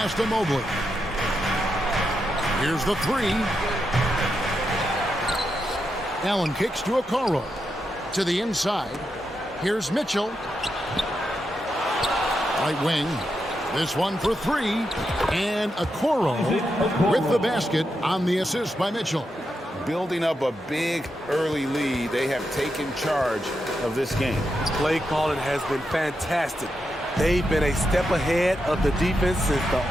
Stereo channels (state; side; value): normal; both; correlation 0.85